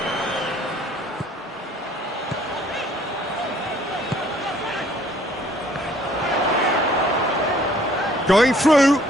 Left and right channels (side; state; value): both; normal; correlation 0.58